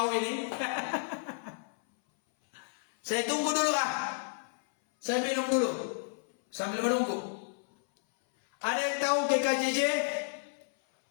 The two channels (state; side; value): silent; right; 57 dB below the other